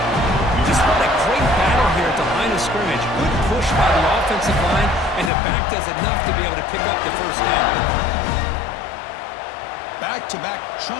Just what a great battle here at the line of scrimmage. Good push by the offensive line, and the back does enough to be able to pick up the first down. Back-to-back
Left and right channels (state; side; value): drops out; right; at 5.3 s